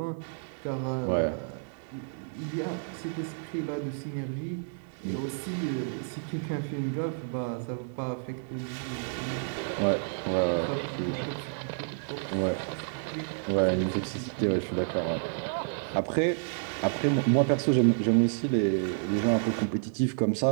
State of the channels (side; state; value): left; silent; digital silence